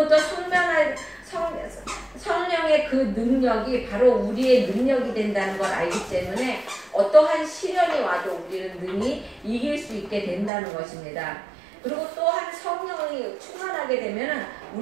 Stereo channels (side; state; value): left; drops out; at 10.5 s